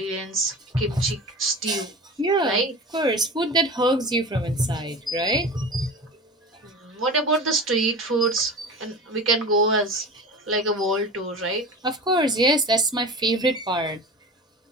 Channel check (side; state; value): both; normal; correlation 0.32